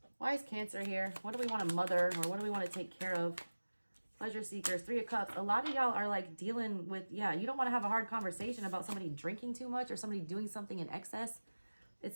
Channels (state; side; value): inverted; both; correlation -1.00